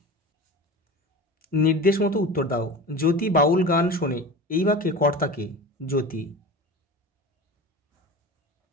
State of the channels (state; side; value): normal; both; correlation 0.33